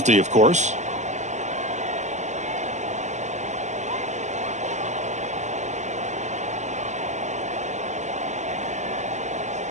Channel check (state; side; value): late; left; 0.34 ms